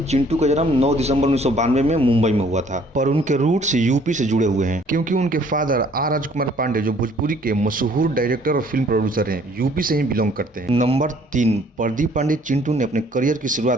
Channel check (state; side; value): normal; both; correlation 0.59